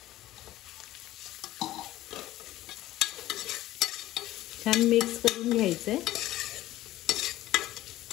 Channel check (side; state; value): right; quieter; 15.3 dB